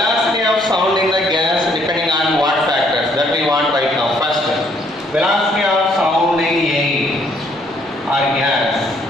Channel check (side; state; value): both; normal; correlation 0.66